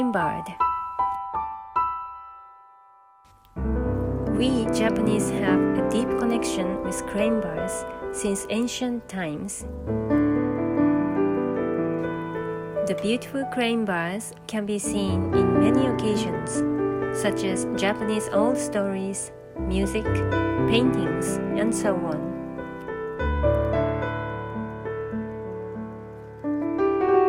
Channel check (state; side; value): identical; both; correlation 1.00